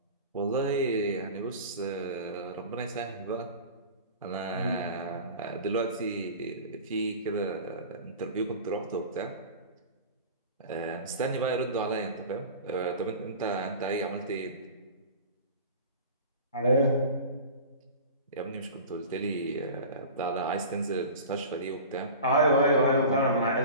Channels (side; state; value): both; inverted; correlation -0.37